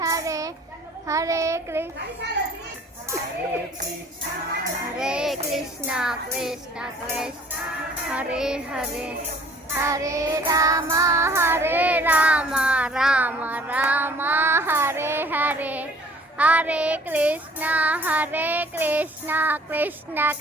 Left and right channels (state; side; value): normal; both; correlation 0.54